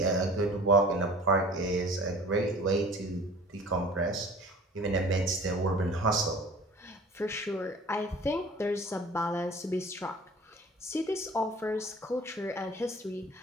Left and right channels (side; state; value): both; normal; correlation 0.45